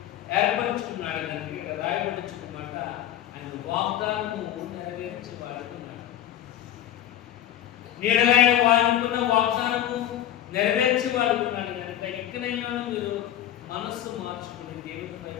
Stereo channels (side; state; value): right; quieter; 11.8 dB